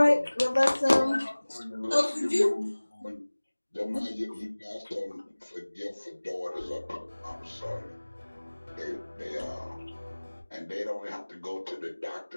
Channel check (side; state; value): both; inverted; correlation -1.00